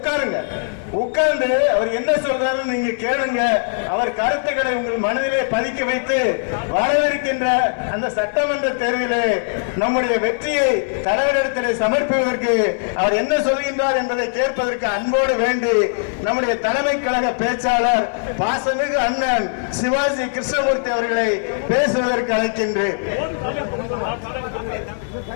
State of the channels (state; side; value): silent; right; digital silence